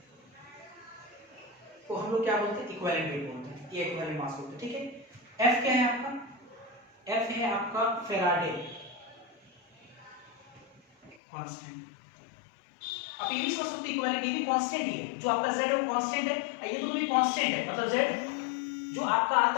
को हम लोग क्या बोलते हैं, इक्विवेलेंट वेट बोलते हैं, ये इक्विवेलेंट मास बोलते हैं, ठीक है। F क्या है आपका, F है आपका फैराडे कांस्टेंट, आप ये भी समझ सकते हैं इक्विवेलेंट, ये भी कांस्टेंट ही है, जो आपका Z है वो कांस्टेंट है, ये तो भी कांस्टेंट है, मतलब Z जो आपका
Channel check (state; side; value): drops out; right; at 11.2 s